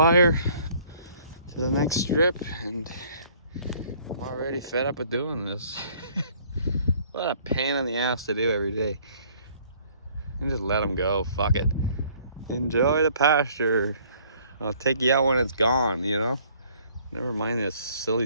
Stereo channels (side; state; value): both; inverted; correlation -0.59